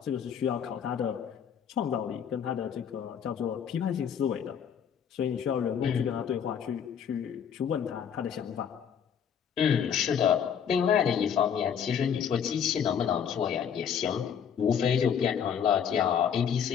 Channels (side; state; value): right; quieter; 7.9 dB